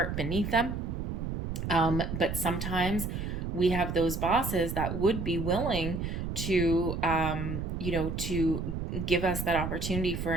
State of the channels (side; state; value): right; noise; rumble, 4 dB below the sound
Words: beneath them. But sometimes we have those bosses that would be willing to, to give us that opportunity for